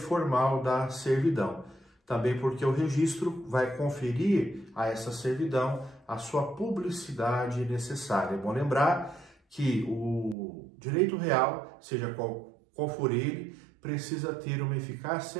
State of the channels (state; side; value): drops out; left; at 10.4 s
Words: da servidão. Também porque o registro vai conferir a essa servidão a sua publicidade necessária. É bom lembrar que o direito real, seja qual for ele, precisa ter uma